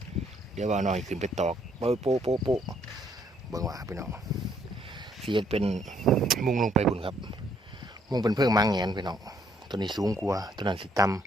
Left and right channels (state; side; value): normal; both; correlation 0.69